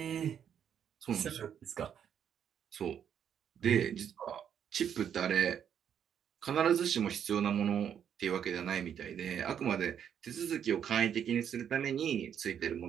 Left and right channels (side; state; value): left; quieter; 8.7 dB